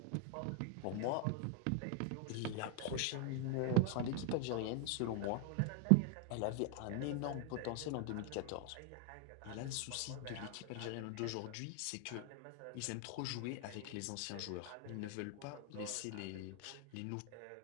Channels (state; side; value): different; both; correlation 0.00